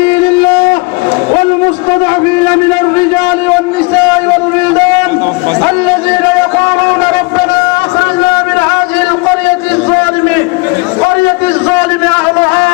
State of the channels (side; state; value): right; quieter; 27.7 dB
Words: الله والمستضعفين من الرجال والنساء والولدان الذين يقولون ربنا أخرجنا من هذه القرية الظالم أهلها